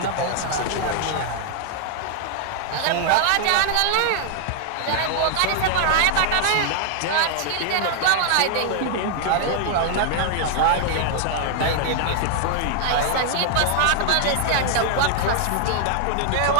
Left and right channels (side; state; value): both; different; correlation 0.00